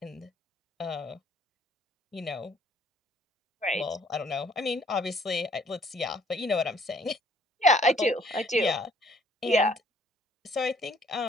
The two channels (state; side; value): normal; both; correlation 0.61